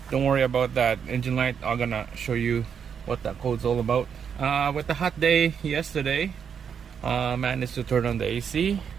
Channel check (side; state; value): left; quieter; 7.3 dB